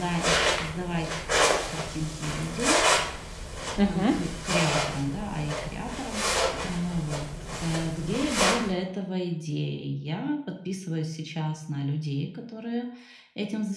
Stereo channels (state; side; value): identical; both; correlation 1.00